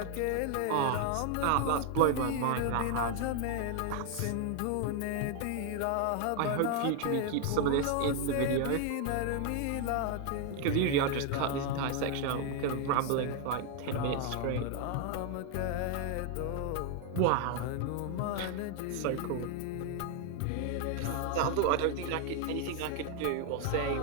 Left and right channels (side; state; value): both; different; correlation 0.00